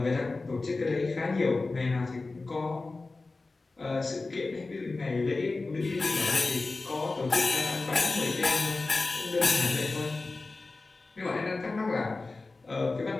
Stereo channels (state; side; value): quieter; right; 3.5 dB